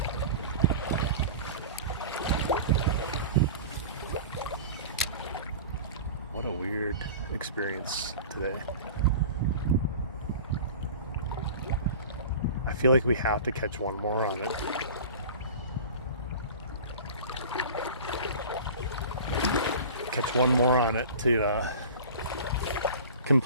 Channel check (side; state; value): both; inverted; correlation -0.36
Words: What a weird experience today. I feel like we have to catch one more on it. Catch one more on it to